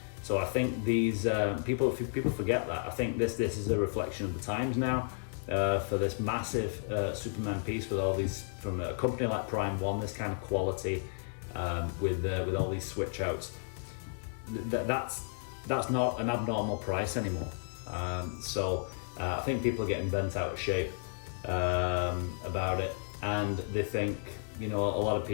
So I think these people forget that. I think this is a reflection of the times now. For this massive Superman piece with all these, from a company like Prime 1, this kind of quality, with all these switch outs, that's not an abnormal price anymore. So I think people are getting bent out of shape about it, and they think, you know, a lot of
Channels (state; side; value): silent; right; digital silence